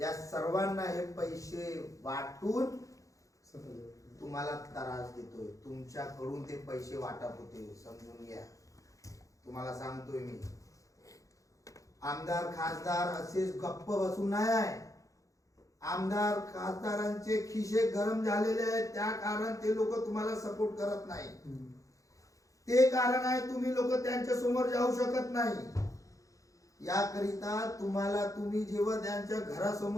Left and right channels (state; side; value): late; right; 0.16 ms